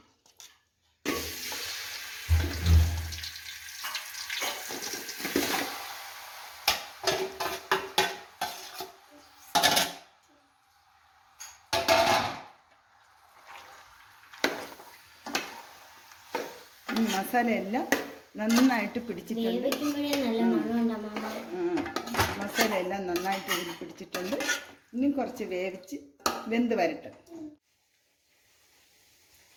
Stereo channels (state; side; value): identical; both; correlation 1.00